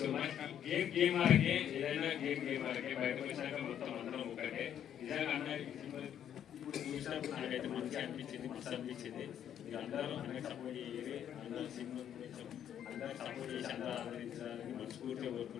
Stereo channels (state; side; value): quieter; right; 9.8 dB